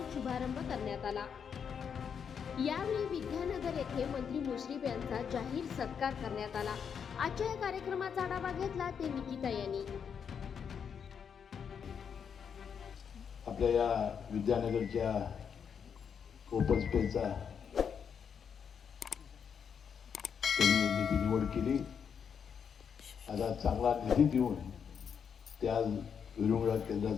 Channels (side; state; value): right; quieter; 7.1 dB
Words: शुभारंभ करण्यात आला। यावेळी विद्यानगर येथे मंत्री मुश्रीफ यांचा जाहीर सत्कार करण्यात आला। आजच्या या कार्यक्रमाचा आढावा घेतला ते निकिता यांनी। आपल्या या विद्यानगरच्या ओपन स्पेसचा त्यांनी निधी निवड केली। आता चांगला निधी देऊन त्या विरुंगळा